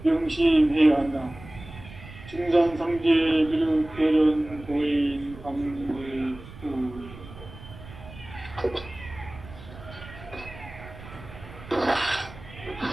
명심해야 한다. 증산상제 비륵 대련 도인 강물구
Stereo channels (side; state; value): right; noise; rumble, 16 dB below the sound